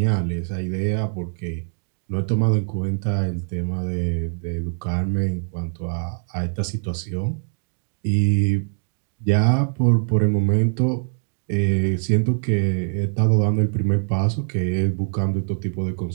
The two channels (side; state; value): left; silent; 56 dB below the other